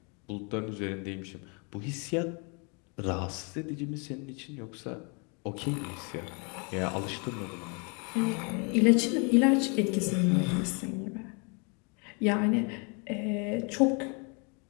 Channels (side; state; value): right; quieter; 34.5 dB